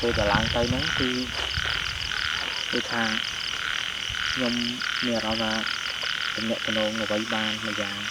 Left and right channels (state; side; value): identical; both; correlation 1.00